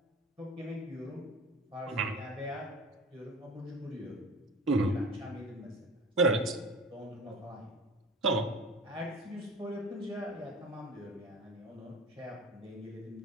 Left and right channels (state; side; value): normal; both; correlation 0.38